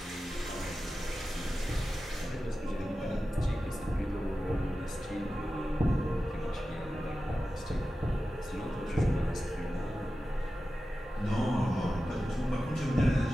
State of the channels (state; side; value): normal; both; correlation 0.93